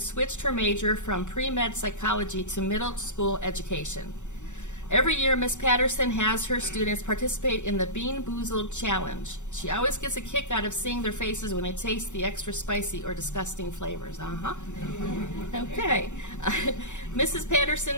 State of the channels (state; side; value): late; right; 0.84 ms